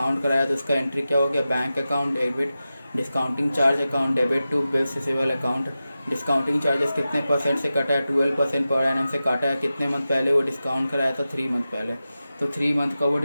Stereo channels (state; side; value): inverted; both; correlation -0.94